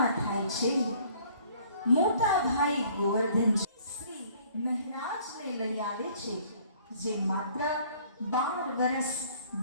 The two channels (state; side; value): inverted; both; correlation -0.57